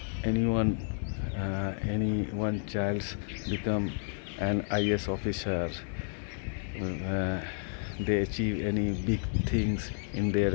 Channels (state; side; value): silent; right; 57 dB below the other